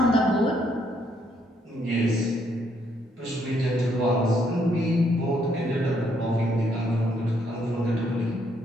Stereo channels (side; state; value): both; normal; correlation 0.72